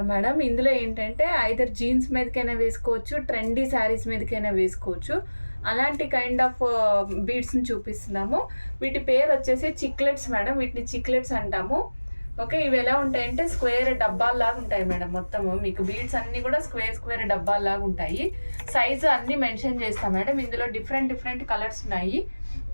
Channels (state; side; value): inverted; both; correlation -1.00